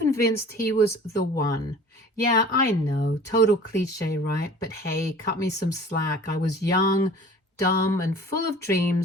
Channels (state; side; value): normal; both; correlation 0.46